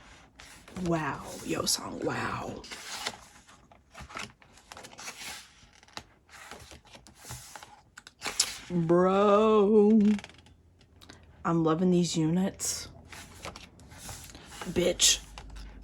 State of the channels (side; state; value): both; identical; correlation 1.00